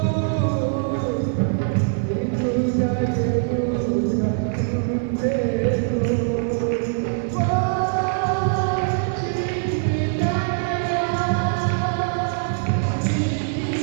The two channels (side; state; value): left; silent; digital silence